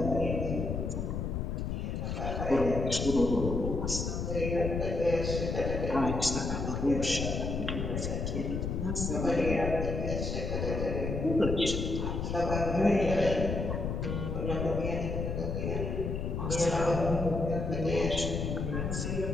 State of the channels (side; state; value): left; noise; rumble, 2 dB below the sound